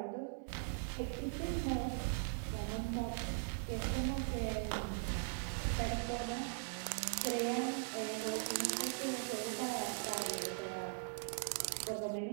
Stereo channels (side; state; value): left; silent; 51 dB below the other